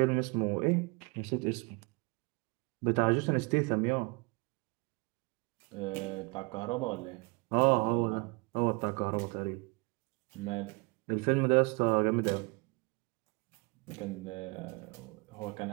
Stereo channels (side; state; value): left; quieter; 29.8 dB